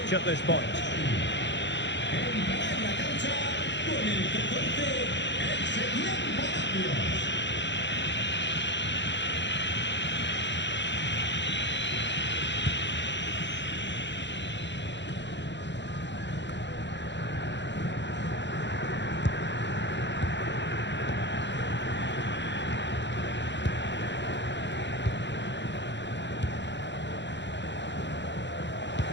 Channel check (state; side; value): late; right; 0.52 ms